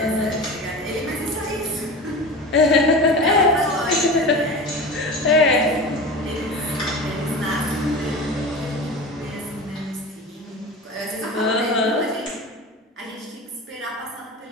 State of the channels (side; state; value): both; normal; correlation 0.31